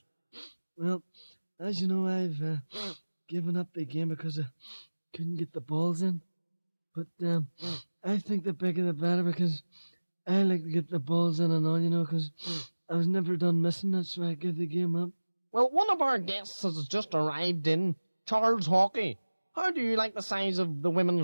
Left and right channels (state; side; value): inverted; both; correlation -1.00